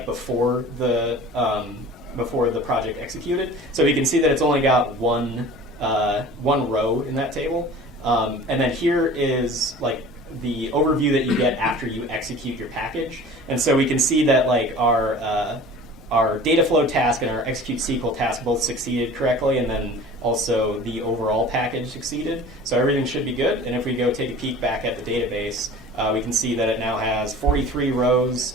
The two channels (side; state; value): both; normal; correlation 0.42